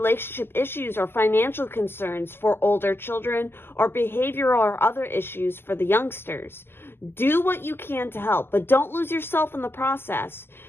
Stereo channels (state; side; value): late; right; 0.11 ms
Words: issues or financial concerns for older children, or behavioral or other issues for the youngsters. Do what you can to help, but don't lose yourself in the process.